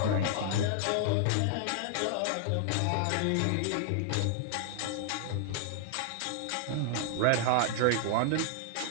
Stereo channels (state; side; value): different; both; correlation -0.01